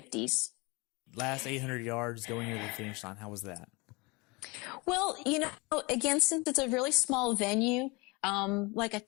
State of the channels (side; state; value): right; quieter; 26.7 dB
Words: Last 800 yards going near the finish line. How was that? Well, again, since it's a really small venue, like a